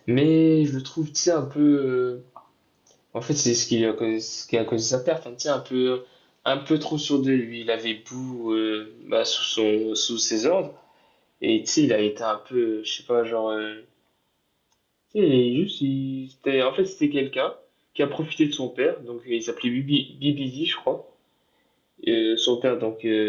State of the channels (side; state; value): both; identical; correlation 1.00